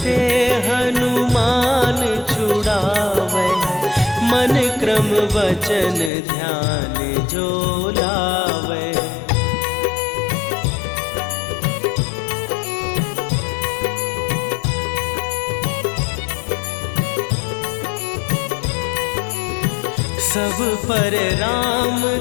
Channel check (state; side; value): drops out; right; at 6.1 s